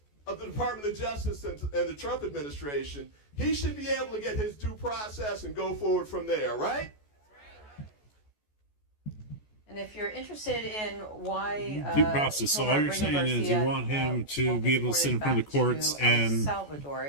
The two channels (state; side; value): late; right; 14 ms